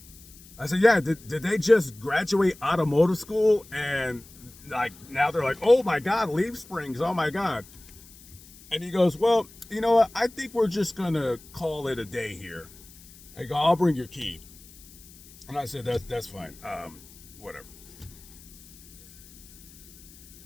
I said, yeah, did they just graduate automotive school and now they're like, oh my God, leaf springs, oh my God. And he goes, well, you know what? I think we're just gonna call it a day here. I go, I'll bring your key. And I said, that's fine, whatever.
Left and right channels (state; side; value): noise; left; hiss, 22 dB below the sound